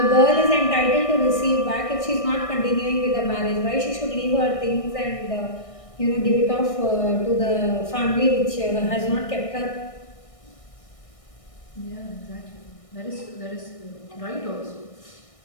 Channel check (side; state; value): right; late; 1.6 ms